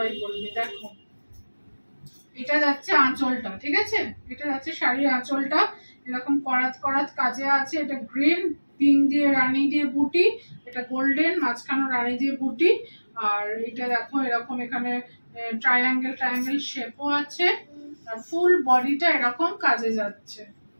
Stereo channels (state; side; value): inverted; both; correlation -1.00